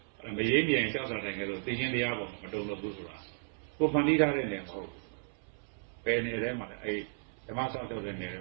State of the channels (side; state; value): left; silent; 55 dB below the other